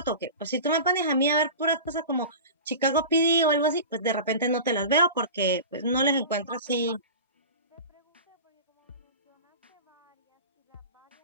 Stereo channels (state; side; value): inverted; both; correlation -0.33